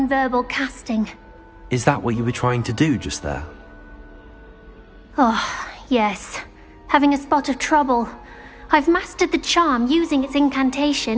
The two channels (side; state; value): both; identical; correlation 1.00